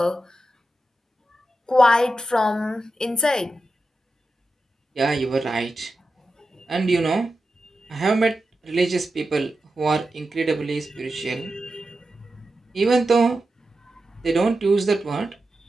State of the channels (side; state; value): both; normal; correlation 0.91